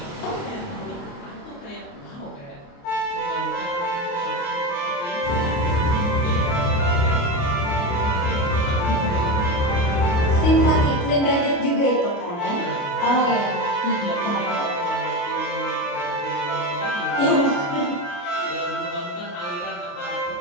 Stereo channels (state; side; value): late; right; 29 ms